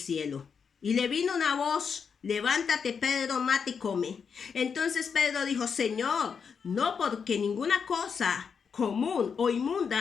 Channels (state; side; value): quieter; right; 6.3 dB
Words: Y le vino una voz, levántate, Pedro, mate y come. Entonces Pedro dijo, Señor, no, porque ninguna cosa común o